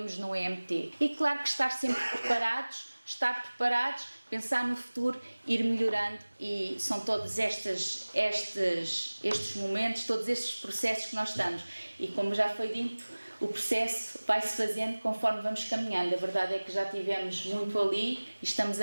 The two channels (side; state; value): both; inverted; correlation -1.00